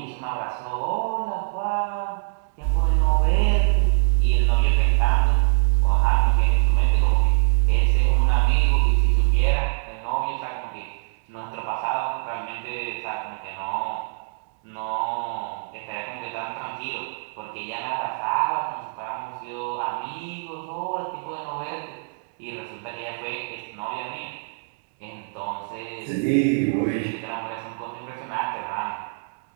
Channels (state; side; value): silent; left; 62 dB below the other